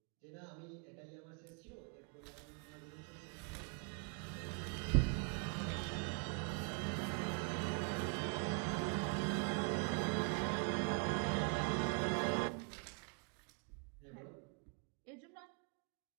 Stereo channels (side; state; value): left; quieter; 38.4 dB